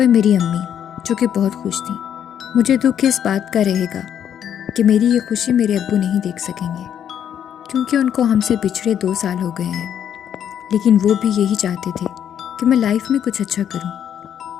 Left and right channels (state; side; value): quieter; right; 9.3 dB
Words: मेरी अम्मी जो कि बहुत खुश थी. मुझे दुख इस बात का रहेगा कि मेरी ये खुशी मेरे अब्बू नहीं देख सकेंगे क्योंकि उनको हमसे पिछड़े 2 साल हो गए हैं. लेकिन वो भी यही चाहते थे कि मैं लाइफ में कुछ अच्छा करूं.